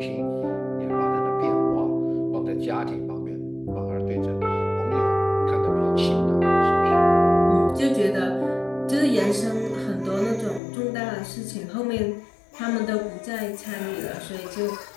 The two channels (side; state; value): right; drops out; at 10.6 s